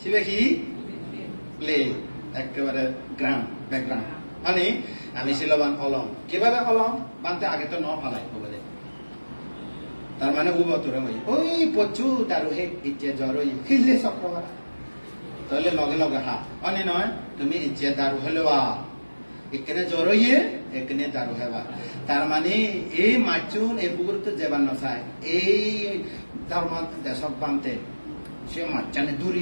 শিবে কি প্লে একেবারে গ্রাউন্ড ব্যাকগ্রাউন্ড মানে আমি শিলবান অলং কিভাবে অলং বানতে আগে তো ন ফালাই বলে তার মানে উবতরে ওই পচু তার হে ইচ্ছে জ্বর খিলে চক্রবার তাহলে লগে লগে হা মানে নয় তুমি ইচ্ছে দারু হলেওয়া এখানে জ্বর হইয়ে এখানে দারু হেবা তার মানে এই মাচুন এই পুকুর তো যেবার নচাই এই ধর্ম দেশক বানতে সে মাচানে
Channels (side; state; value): both; inverted; correlation -1.00